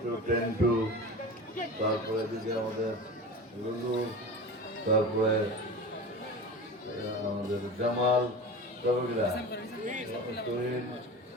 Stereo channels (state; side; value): normal; both; correlation 0.32